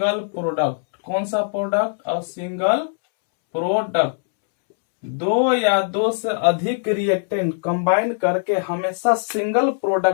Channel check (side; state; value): right; silent; 65 dB below the other